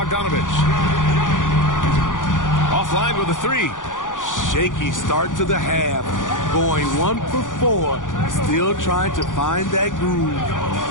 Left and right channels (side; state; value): right; late; 0.88 ms